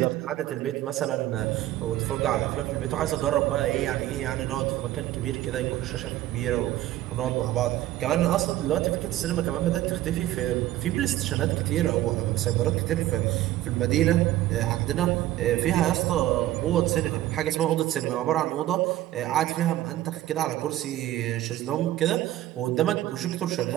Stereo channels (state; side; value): quieter; left; 14.5 dB